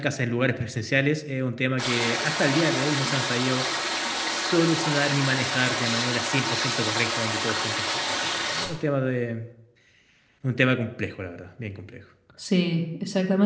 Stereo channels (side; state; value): both; identical; correlation 1.00